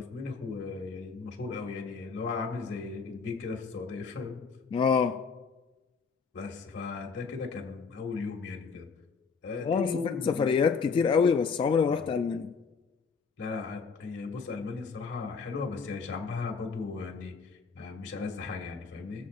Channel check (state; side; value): quieter; right; 5.3 dB